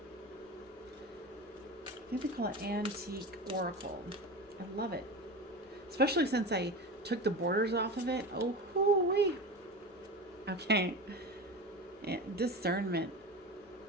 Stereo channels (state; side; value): normal; both; correlation 0.28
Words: I think they call it Antique Oracle. I love it. Especially since I took the borders off of it. Oh, hoo-wee. Okay. Discernment.